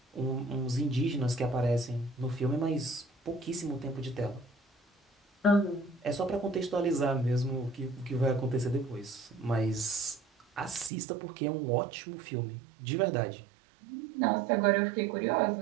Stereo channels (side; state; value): left; drops out; at 10.9 s